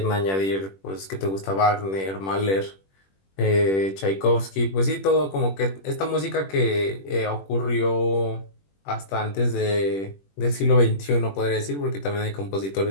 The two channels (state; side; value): late; right; 21 ms